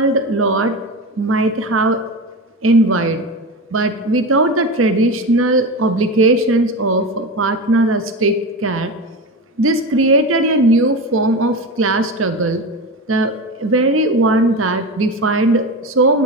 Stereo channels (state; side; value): normal; both; correlation 0.24